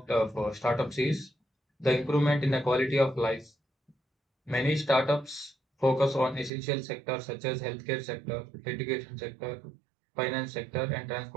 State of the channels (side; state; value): left; drops out; at 6.5 s